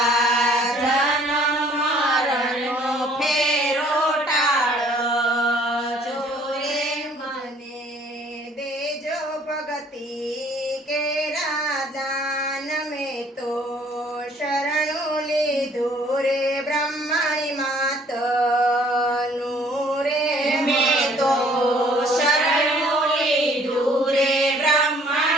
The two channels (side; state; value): both; normal; correlation 0.58